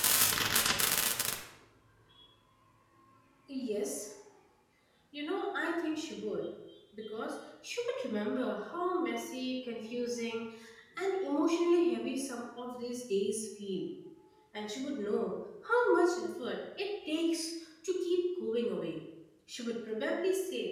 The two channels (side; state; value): both; identical; correlation 1.00